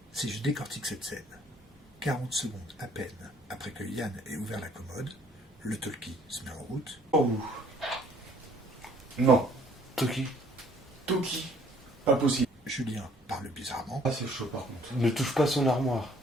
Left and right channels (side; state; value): both; normal; correlation 0.60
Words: Si je décortique cette scène, 40 secondes à peine après que Yann ait ouvert la commode, le talkie se met en route. Sur vous. Non, Toki, Toki, pas possible. Julien parle bizarrement. Ah, c'est chaud par contre. ne touche pas son armoire.